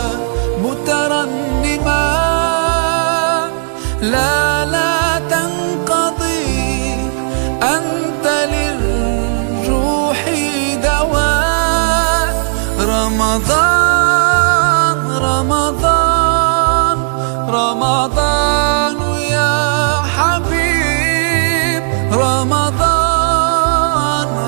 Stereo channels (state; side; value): silent; left; digital silence